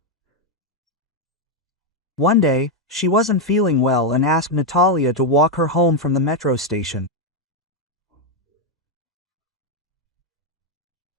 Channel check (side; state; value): both; normal; correlation 0.02